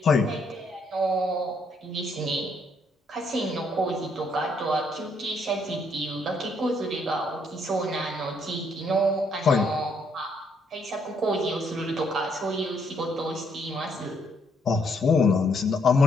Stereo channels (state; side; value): normal; both; correlation 0.71